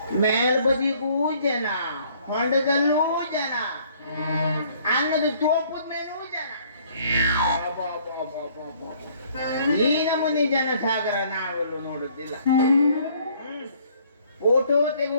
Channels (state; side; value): inverted; both; correlation -0.60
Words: ಮೇಲ್ಬದಿಗೂ ಜನ, ಹೊಂಡದಲ್ಲೂ ಜನ, ಅನ್ನದ ತೋಪದ ಮೇಲೂ ಜನ. ಈ ನಮೂನಿ ಜನ ಸಾಗರ ನಾವೆಲ್ಲೂ ನೋಡುತ್ತಿಲ್ಲ. ಫೋಟೋ